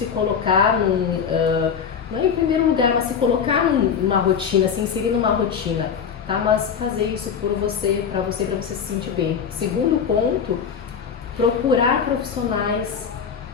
colocar não em primeiro lugar, mas se colocar numa rotina, se inserir numa rotina, tá? Mas fazer isso por você, para você se sentir bem. Segundo ponto, procurar profissionais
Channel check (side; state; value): right; quieter; 7.0 dB